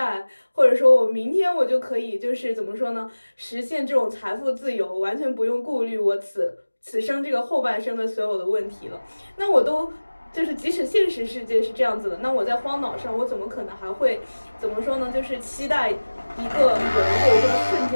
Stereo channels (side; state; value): both; inverted; correlation -1.00